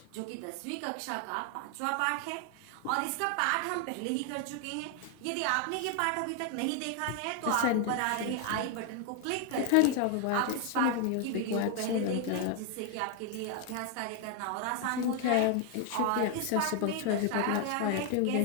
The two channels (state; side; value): different; both; correlation 0.01